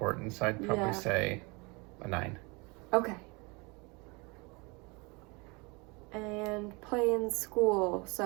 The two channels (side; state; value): left; quieter; 28.1 dB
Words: so I'd probably say a 9. Okay. And play in school,